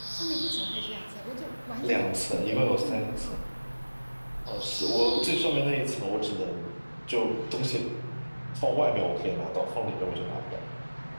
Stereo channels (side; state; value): both; inverted; correlation -1.00